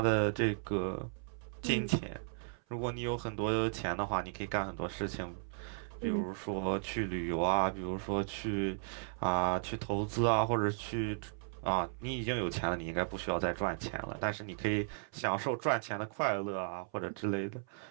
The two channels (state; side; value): silent; left; 54 dB below the other